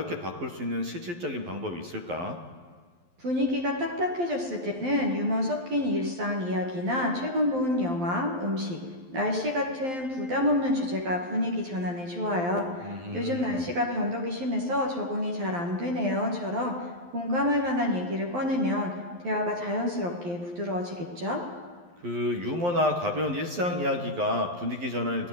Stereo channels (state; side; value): late; left; 12 ms